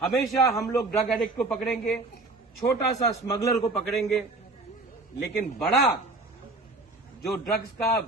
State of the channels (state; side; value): quieter; left; 3.2 dB